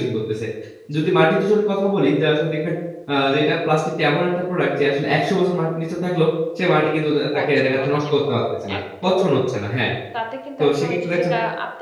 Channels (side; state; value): both; identical; correlation 1.00